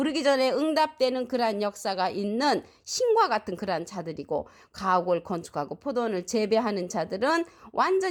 전에 응답되는 그러한 역사가 있는 신과 같은 그러한 자들이고 가옥을 건축하고 포도원을 재배하는 자들은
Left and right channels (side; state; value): both; identical; correlation 1.00